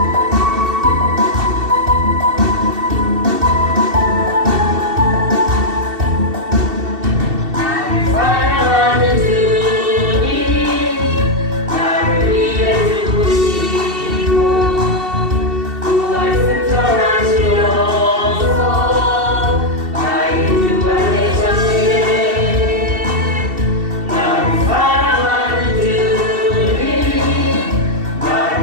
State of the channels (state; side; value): late; left; 2.7 ms